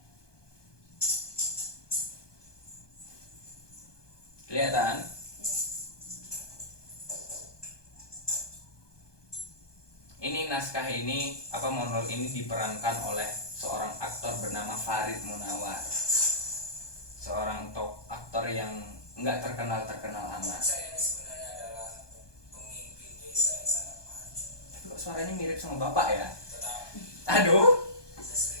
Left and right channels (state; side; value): late; right; 1.2 ms